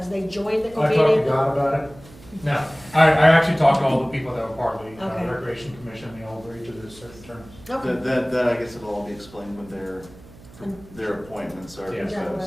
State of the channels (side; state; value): right; noise; hum, 21 dB below the sound